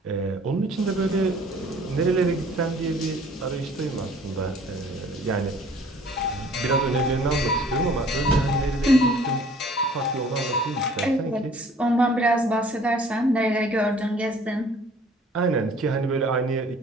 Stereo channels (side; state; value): both; normal; correlation 0.53